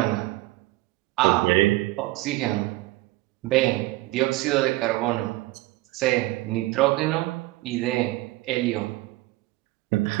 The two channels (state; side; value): quieter; left; 19.0 dB